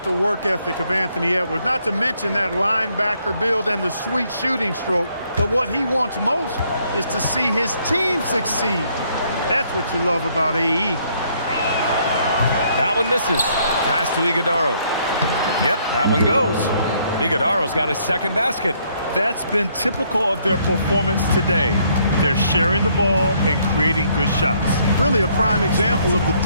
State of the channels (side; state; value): both; inverted; correlation -0.68